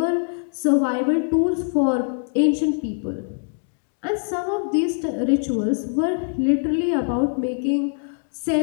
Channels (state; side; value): silent; right; digital silence